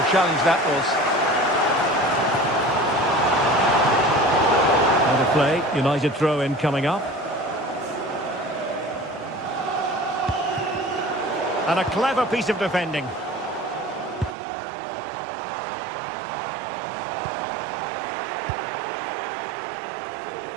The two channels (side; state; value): left; drops out; at 14.4 s